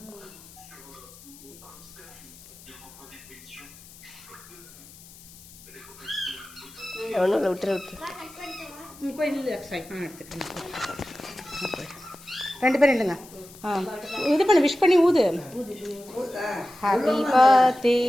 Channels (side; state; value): left; noise; hiss, 20 dB below the sound